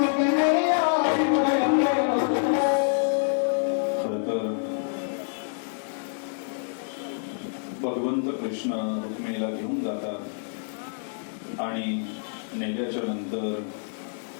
भगवंत कृष्ण रुक्मिणीला घेऊन जातात आणि नेल्याच्या नंतर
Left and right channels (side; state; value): right; silent; digital silence